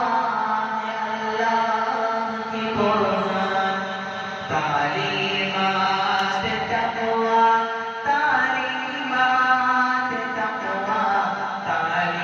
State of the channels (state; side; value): identical; both; correlation 1.00